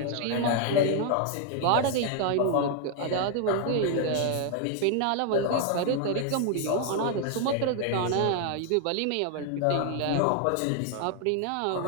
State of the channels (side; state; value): both; different; correlation 0.00